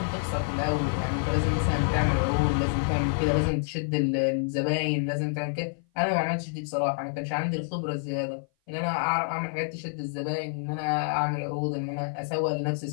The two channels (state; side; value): silent; right; 56 dB below the other